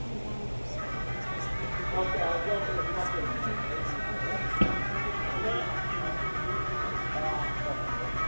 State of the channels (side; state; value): both; inverted; correlation -1.00